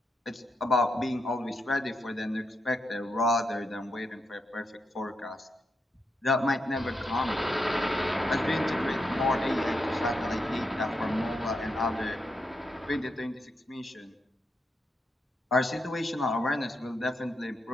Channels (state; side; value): normal; both; correlation 0.83